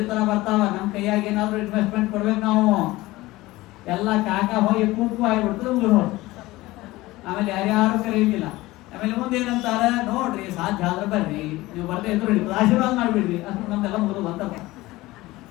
ತರ ಬರ್ತಾವ. ನಮ್ ಕೈಯಾಗ ಏನಾದ್ರು ಇನ್ವೆಸ್ಟ್ಮೆಂಟ್ ಕೊಡ್ಬೇಕು ನಾವು. ಎಲ್ಲ ಕಾಕಾ ಹೋಗಿ ಕೂಪು ಆಗಿಬಿಡ್ತದೆ, ಊರು. ಆಮೇಲೆ ಯಾರ್ಯಾರು ಕರೆಯುತ್ತಿಲ್ಲ. ಆಮೇಲೆ ಮುಂದೆ ಏನಂತಾರ, ನೋಡ್ರಿ ಸಾಧ್ಯ ಆದ್ರೆ ಬರ್ರಿ, ನೀವು ಬರ್ದೇ ಇದ್ರು ಆಶೀರ್ವಾದ ಮಾಡ್ಬಿಡ್ರಿ. ಅಷ್ಟು ನಮ್ದೆಲ್ಲ ಮುಗಿದು ಬಂತಪ್ಪ.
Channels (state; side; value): quieter; right; 19.0 dB